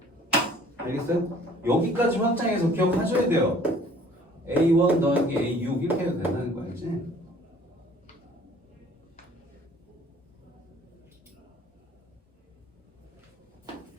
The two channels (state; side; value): normal; both; correlation 0.54